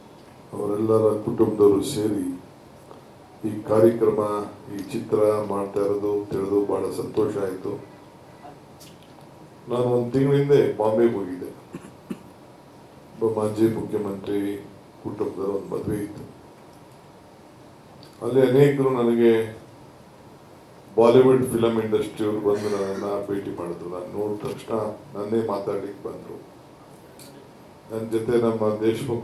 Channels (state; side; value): identical; both; correlation 1.00